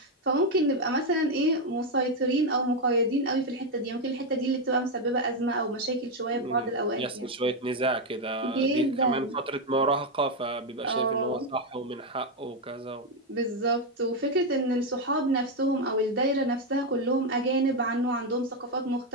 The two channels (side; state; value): both; normal; correlation 0.05